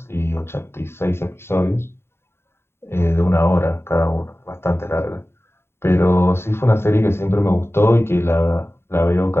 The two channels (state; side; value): late; right; 0.12 ms